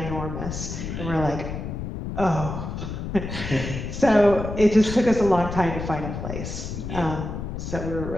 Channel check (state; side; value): noise; left; rumble, 6 dB below the sound